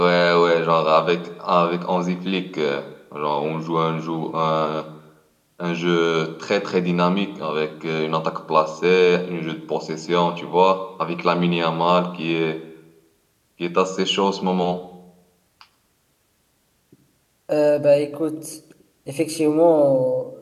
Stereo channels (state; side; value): identical; both; correlation 1.00